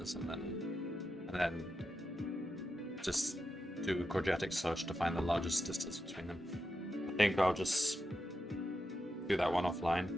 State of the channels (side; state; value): both; normal; correlation 0.88